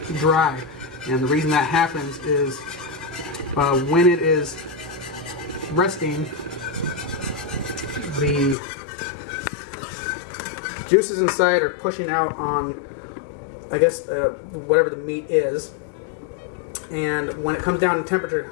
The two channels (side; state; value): right; drops out; at 8.6 s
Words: dry. And the reason that happens is when it is resting, the juices inside are pushing out on, I guess, whatever the meat is. And when it comes down in